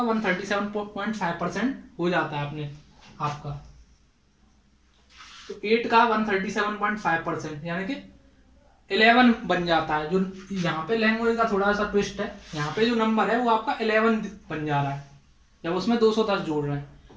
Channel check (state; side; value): identical; both; correlation 1.00